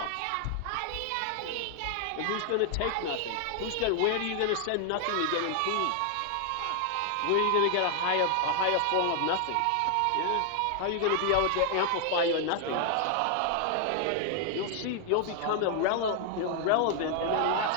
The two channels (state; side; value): different; both; correlation 0.00